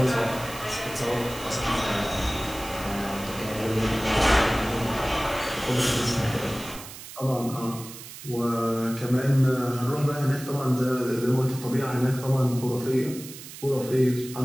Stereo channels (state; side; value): noise; right; hiss, 14 dB below the sound